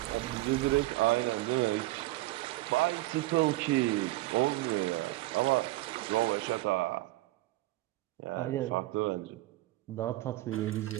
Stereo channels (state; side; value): quieter; left; 18.5 dB